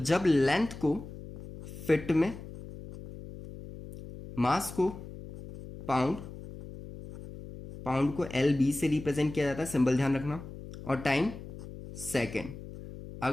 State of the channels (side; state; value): left; noise; hum, 13 dB below the sound